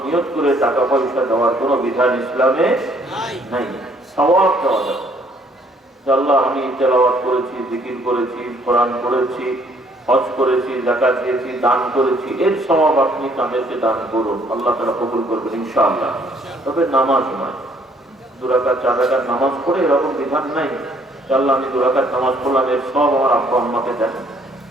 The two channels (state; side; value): normal; both; correlation 0.64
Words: নিয়ত করে টাকা পয়সা দেওয়ার কোনো বিধান ইসলামে নাই। সওয়াব দেওয়া যাবে। আল্লাহ আমি তেলাওয়াত করেছি, জিকির করেছি, কোরআন পড়েছি, হজ করেছি, যাকাত দিয়েছি, দান করেছি, এর সওয়াব আপনি তাদেরকে দান করুন, আল্লাহ তাআলা কবুল করবেন ইনশাআল্লাহ। তবে নামাজ নয়, 2 রাকাত 4 রাকাত নামাজ পড়ে এরকম বিধান নাই। আল্লাহ আমি 2 রাকাত নামাজ পড়লাম, এর সব আমার আব্বা আম্মাকে দেন।